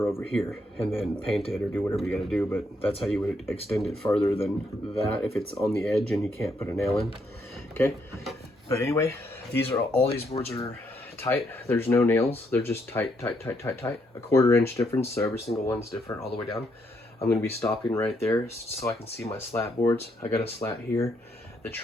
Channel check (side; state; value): both; normal; correlation 0.75